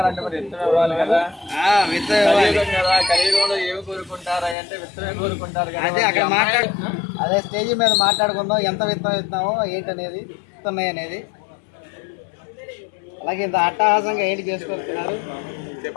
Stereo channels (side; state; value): right; drops out; at 4.5 s